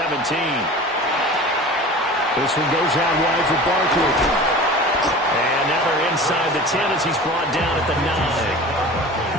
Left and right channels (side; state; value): both; normal; correlation 0.37